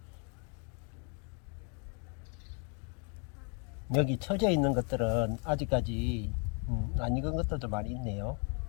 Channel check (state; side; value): quieter; right; 38.4 dB